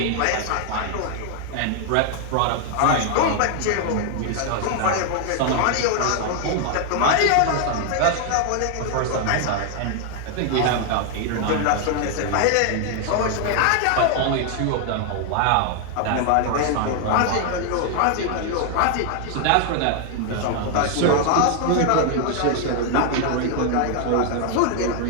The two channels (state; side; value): different; both; correlation 0.00